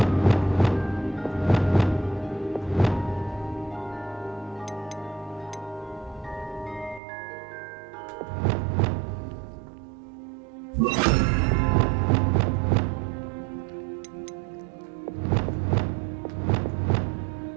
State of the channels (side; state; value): left; drops out; at 7.0 s